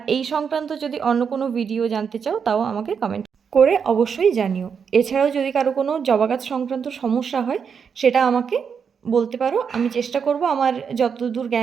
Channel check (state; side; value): quieter; left; 6.6 dB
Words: এই সংক্রান্ত যদি অন্য কোনো ভিডিও জানতে চাও তাও আমাকে কমেন্ট করে অবশ্যই জানিও। এছাড়াও যদি কারো কোনো জবা গাছ সংক্রান্ত সমস্যা হয় সেটা আমাকে বলতে পারো, আমি চেষ্টা করব আমার যতদূর